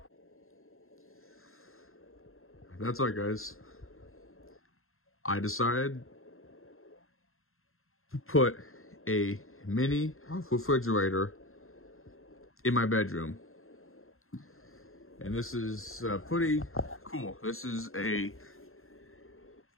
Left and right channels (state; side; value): late; right; 0.61 ms